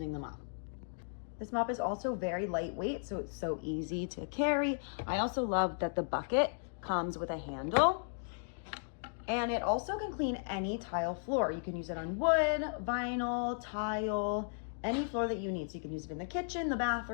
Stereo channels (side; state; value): right; silent; digital silence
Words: the mop. This mop is also very lightweight, so it's so easy to carry. I also love that the bucket comes with a handle, and it also can clean any tile floor. You can use it on wood, vinyl, tile, any floor that you need. So you can use it in the kitchen, the